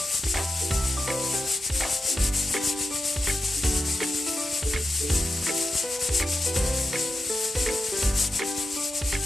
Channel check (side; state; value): both; normal; correlation 0.91